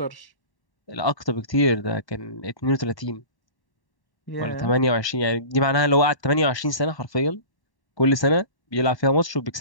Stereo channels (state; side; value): late; right; 1.1 ms